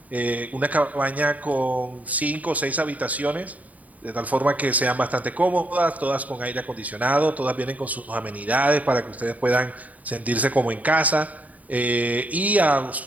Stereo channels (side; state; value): left; late; 0.072 ms